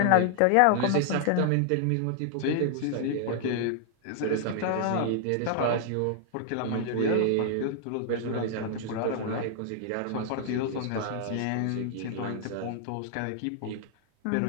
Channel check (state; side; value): different; both; correlation 0.00